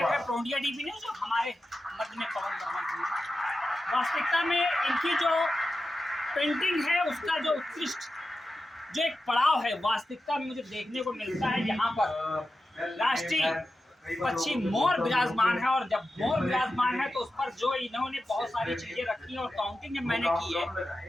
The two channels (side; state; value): both; normal; correlation 0.92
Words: रहे प्रोडिया डीपी ने जो हमारे मध्य में पवन वर्मा जी, वास्तविकता में इनकी जो पेंटिंग है उसका जो उत्कृष्ट जो एक पड़ाव है वास्तविकता में मुझे देखने को मिलता है। यहाँ पर राष्ट्रीय पक्षी मोर विराजमान है और जब मोर विराजमान है तो उस पर जो इन्होंने बहुत सारी चीजें रखी हैं और काउंटिंग जब मैंने की